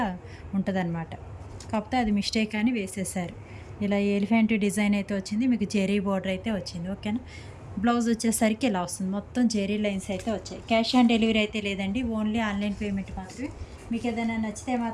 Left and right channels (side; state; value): both; identical; correlation 1.00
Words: ఉంటుందన్నమాట. కాకపోతే అది మిస్టేక్ అని వేసేసారు. ఇలా ఎలిఫెంట్ డిజైన్ అయితే వచ్చింది, మీకు జెరీ బోర్డర్ అయితే వచ్చింది. ఓకేనా. బ్లౌజ్ వచ్చేసరికి ఇలా వస్తుంది, మొత్తం జెరీ లైన్స్ అయితే వచ్చాయి. క్యాష్ ఆన్ డెలివరీ అయితే లేదండి, ఓన్లీ ఆన్లైన్ పేమెంట్ మాత్రమే. మీకు ఏదైనా నచ్చితే